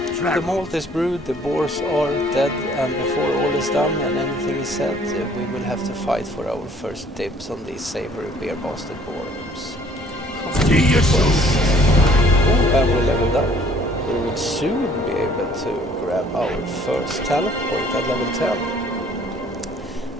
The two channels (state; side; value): normal; both; correlation 0.58